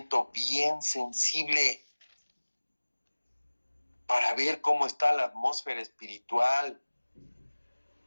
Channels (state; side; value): inverted; both; correlation -1.00